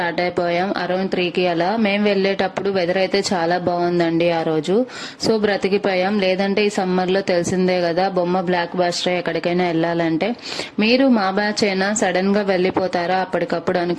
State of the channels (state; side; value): identical; both; correlation 1.00